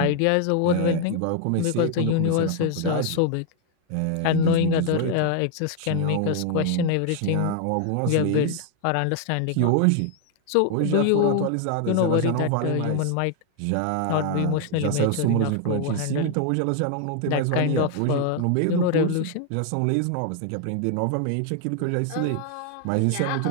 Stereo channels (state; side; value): different; both; correlation 0.00